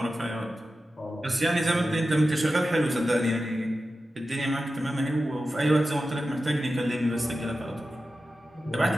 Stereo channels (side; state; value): both; normal; correlation 0.93